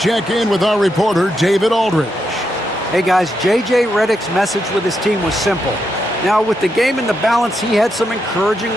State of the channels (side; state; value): both; normal; correlation 0.82